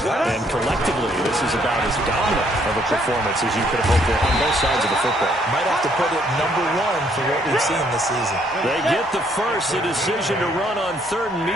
And collectively, this is about as dominant of a performance as you could have hoped for on both sides of the football. Might have to put it number 1 for what we've seen this season. They get the first. The decision to run on 3rd and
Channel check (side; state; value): both; normal; correlation 0.67